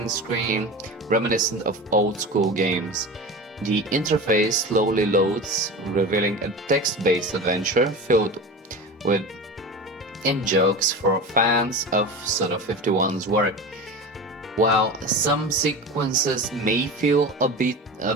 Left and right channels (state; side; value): normal; both; correlation 0.30